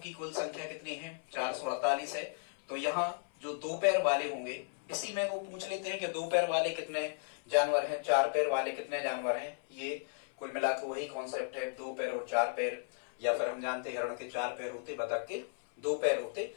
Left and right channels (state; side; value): silent; right; 54 dB below the other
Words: कुल संख्या कितनी है, 448 है, तो यहाँ जो 2 पैर वाले होंगे, इसी में वो पूछ लेते हैं कि 2 पैर वाले कितने जानवर हैं, 4 पैर वाले कितने जानवर हैं। ये कुल मिलाकर वही कॉन्सेप्ट है, 2 पैर और 4 पैर। या फिर हम जानते हैं हिरण के 4 पैर होते, बतख के 2 पैर होते।